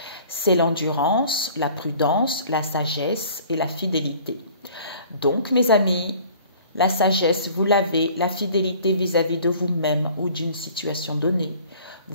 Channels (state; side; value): inverted; both; correlation -0.50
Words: C'est l'endurance, la prudence, la sagesse et la fidélité. Donc, mes amis, la sagesse, vous l'avez, la fidélité vis-à-vis de vous-même ou d'une situation donnée.